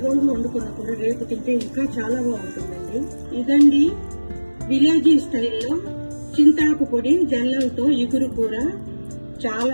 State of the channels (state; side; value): inverted; both; correlation -1.00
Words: రోజు వండుకున్నప్పుడు రేపు తింటే ఇంకా చాలా బాగుంటుందండి. ఇదండి విలేజీ స్టైల్లో చింతాకు పొడి జల్లలతో ఇగురు కూర.